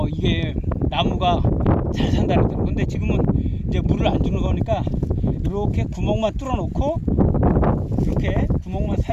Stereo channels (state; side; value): identical; both; correlation 1.00